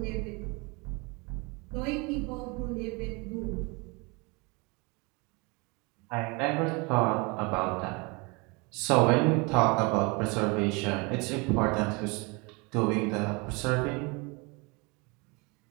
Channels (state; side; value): quieter; left; 28.6 dB